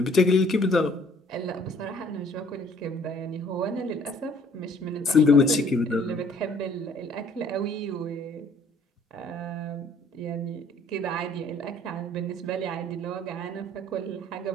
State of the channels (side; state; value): both; normal; correlation 0.59